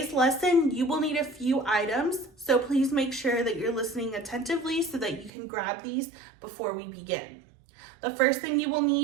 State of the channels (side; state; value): left; drops out; at 5.3 s